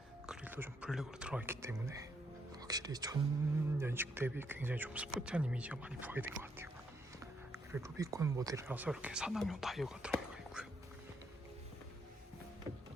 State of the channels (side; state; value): both; normal; correlation 0.76